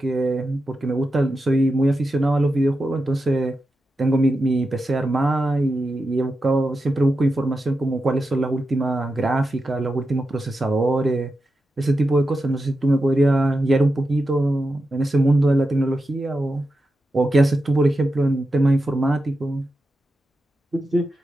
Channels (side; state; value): both; normal; correlation 0.89